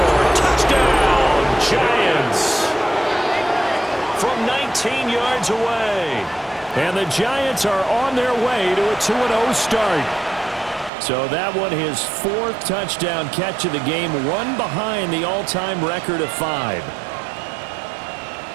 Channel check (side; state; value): left; drops out; at 10.9 s